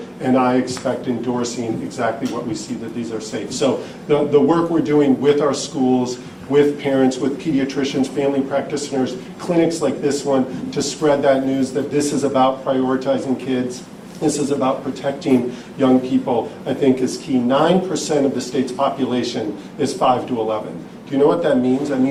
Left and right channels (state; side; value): identical; both; correlation 1.00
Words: and I expect endorsing exactly what we see, that these are safe. So the work we're doing with our schools, with parents, with pediatricians, family practitioners, clinics like this one, to spread that news that this is about prioritizing kids, this is about protecting young people, I think is key. 9% of the state's population is 5 to 11. Do you know what that means? That